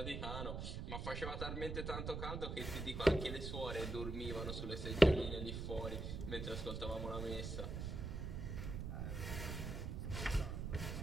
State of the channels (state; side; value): noise; right; rumble, 4 dB below the sound